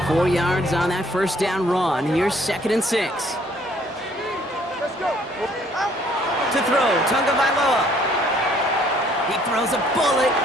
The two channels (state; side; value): normal; both; correlation 0.62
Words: 4 yards on that first down run. Here's 2nd and 6. To throw, Tunga Vailoa. He throws a bullet